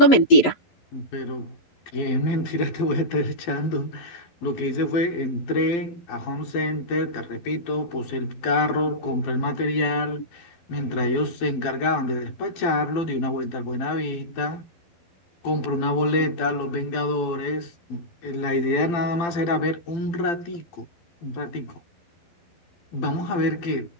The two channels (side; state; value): right; late; 12 ms